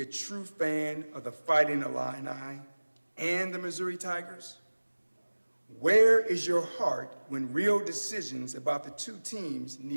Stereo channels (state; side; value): inverted; both; correlation -1.00